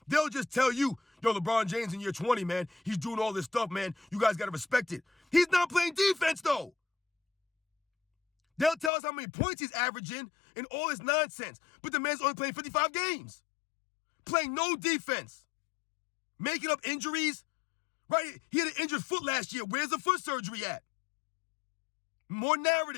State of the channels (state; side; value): drops out; right; at 8.9 s